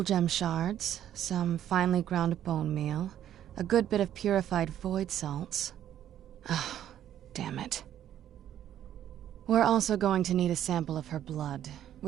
gem shards, some finely ground bone meal, a good bit of purified void salts. Oh, damn it. We're also going to need a sample of her blood,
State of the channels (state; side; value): quieter; left; 11.0 dB